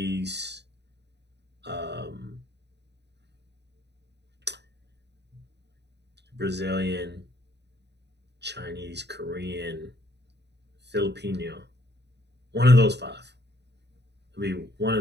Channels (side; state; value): left; late; 0.50 ms